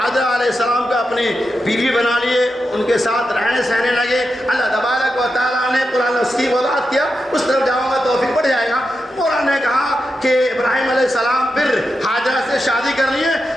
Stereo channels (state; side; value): normal; both; correlation 0.88